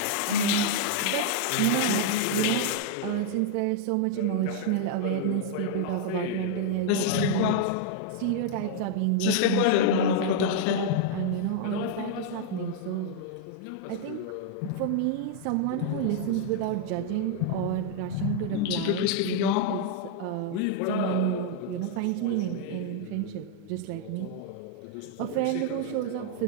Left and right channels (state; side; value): different; both; correlation -0.01